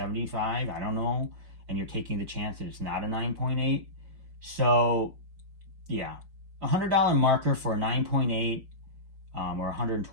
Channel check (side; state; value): left; late; 5.2 ms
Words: I don't know. and you're taking the chance that it's not a 9.8. So yeah, $100 marker for a 9.8 or